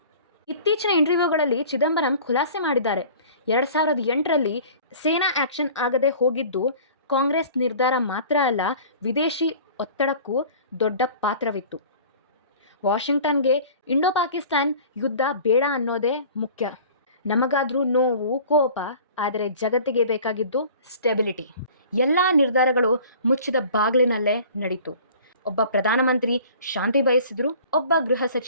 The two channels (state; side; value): inverted; both; correlation -0.45